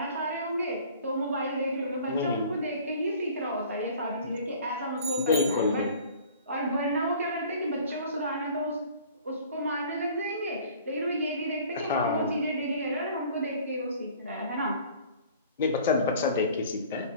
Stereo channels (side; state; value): both; inverted; correlation -0.48